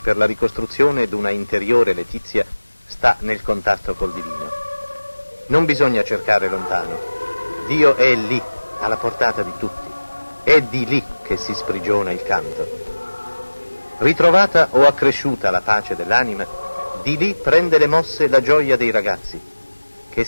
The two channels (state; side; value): inverted; both; correlation -1.00